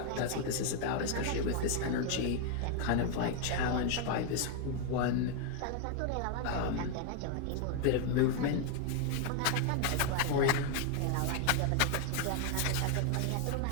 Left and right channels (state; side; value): different; both; correlation 0.00